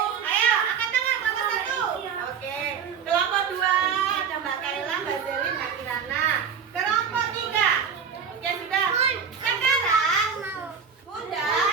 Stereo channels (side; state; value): left; quieter; 6.7 dB